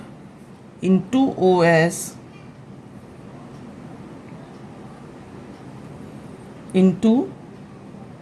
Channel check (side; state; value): both; identical; correlation 1.00